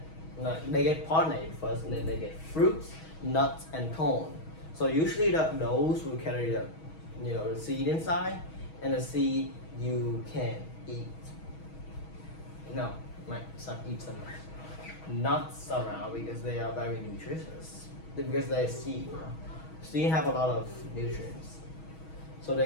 get pollinated first, and then they get fruits, nuts, and corn. So usually those will carry the seed inside, and the seed you can eat. Some eat some nuts around because they are very nutritious. Because they're seed. Seed have a lot of nutrients, so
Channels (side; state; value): right; late; 6.3 ms